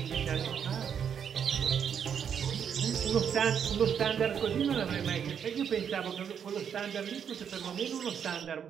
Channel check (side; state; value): left; quieter; 7.9 dB